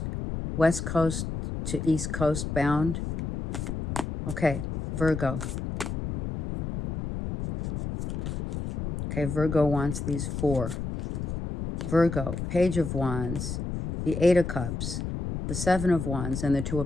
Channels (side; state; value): left; noise; rumble, 5 dB below the sound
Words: West Coast to East Coast bound. Okay, Virgo. Okay, Virgo wants these 4. Virgo, Page of Wands, the 8 of Cups, the 7 of Wands, and the 2